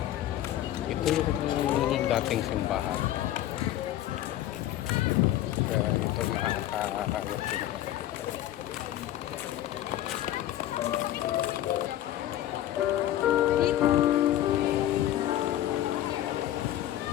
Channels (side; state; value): right; quieter; 13.2 dB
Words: Ito yung dating simbahan. Kaya ito nakakaano.